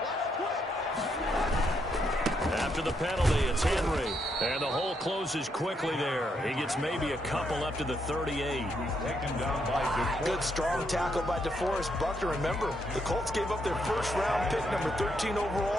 After the penalty, it's Henry. And the hole closes quickly there. He gets maybe a couple up to the 38. Good strong tackle by DeForest Buckner. Remember, the Colts gave up their first-round pick, number 13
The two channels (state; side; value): normal; both; correlation 0.77